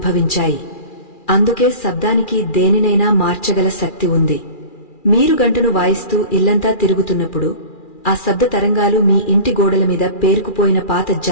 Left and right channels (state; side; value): late; right; 2.4 ms